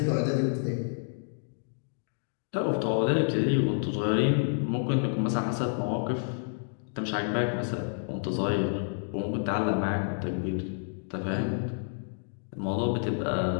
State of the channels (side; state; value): right; silent; digital silence